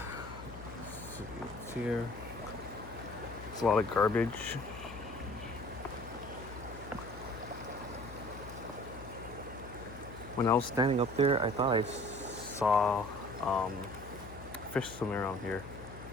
what's here. It's a lot of garbage. When I was standing up there, I thought I saw fish swimming around here.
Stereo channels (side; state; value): left; noise; hum, 13 dB below the sound